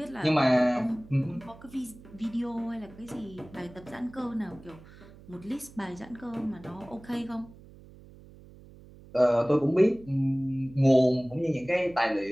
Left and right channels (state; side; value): noise; right; hum, 21 dB below the sound